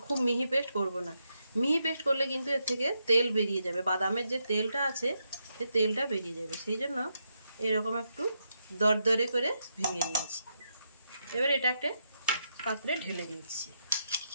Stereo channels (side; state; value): both; inverted; correlation -0.82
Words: খুব মিহি পেস্ট করব না। মিহি পেস্ট করলে কিন্তু এর থেকে তেল বেরিয়ে যাবে, বাদামের যে তেলটা আছে সে তেলটা বেরিয়ে যাবে, সেই জন্য এরকম একটু দরদরে করে ভেঙে নিয়েছি। এবার এটা একটা পাত্রে ঢেলে দিচ্ছি।